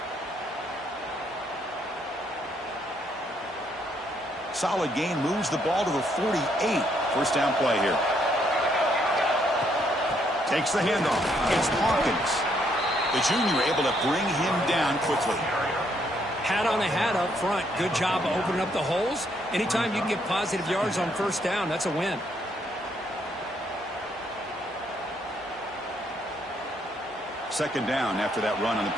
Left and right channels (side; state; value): both; normal; correlation 0.72